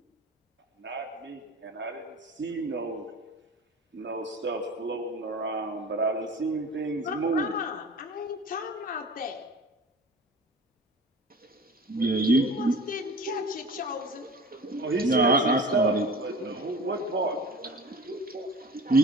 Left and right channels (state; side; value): normal; both; correlation 0.40